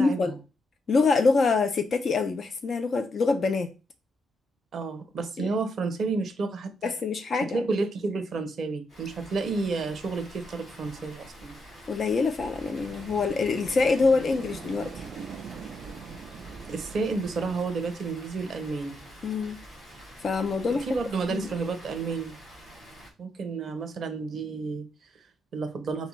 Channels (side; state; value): both; normal; correlation 0.81